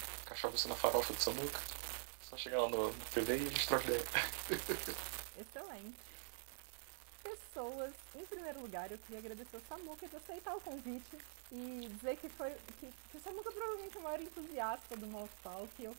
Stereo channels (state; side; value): silent; left; digital silence